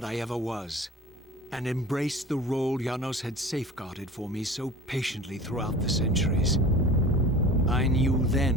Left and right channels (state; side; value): normal; both; correlation 0.40